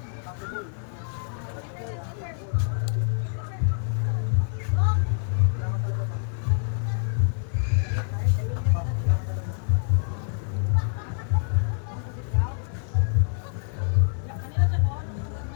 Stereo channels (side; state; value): right; silent; digital silence